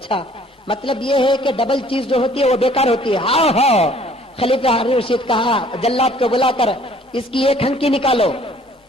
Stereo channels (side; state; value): both; normal; correlation 0.57